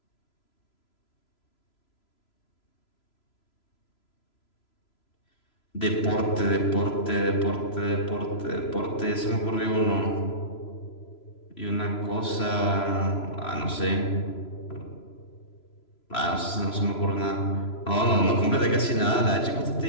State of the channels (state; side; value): late; right; 3.0 ms